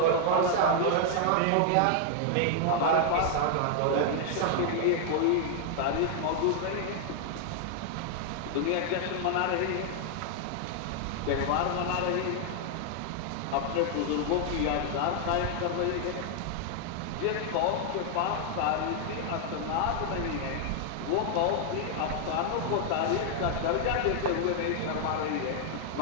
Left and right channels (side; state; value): both; different; correlation 0.00